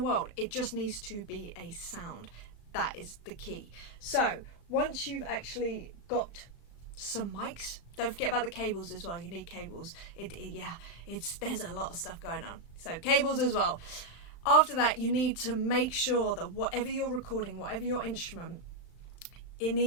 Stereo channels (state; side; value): late; right; 35 ms